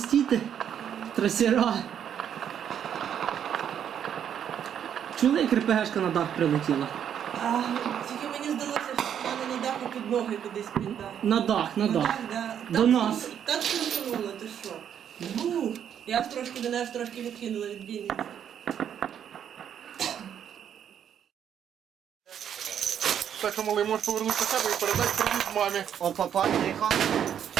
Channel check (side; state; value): left; quieter; 9.0 dB